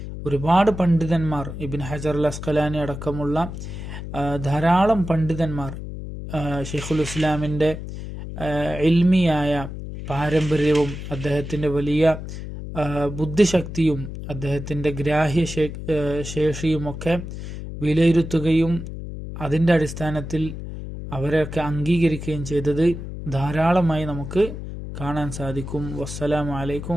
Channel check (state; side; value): noise; left; hum, 9 dB below the sound